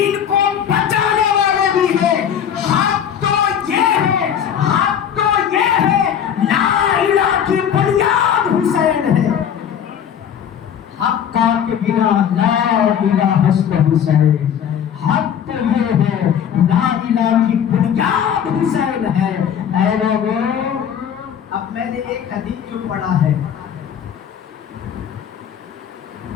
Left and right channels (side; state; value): right; quieter; 8.8 dB